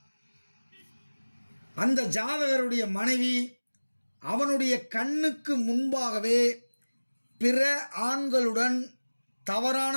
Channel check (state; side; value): inverted; both; correlation -1.00